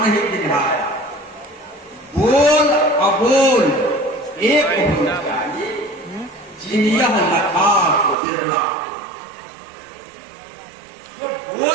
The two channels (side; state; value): left; drops out; at 8.2 s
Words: ही दिखाया। बोल अबोल एक होना चाहिए, जिनियह लखा को बिरला। वो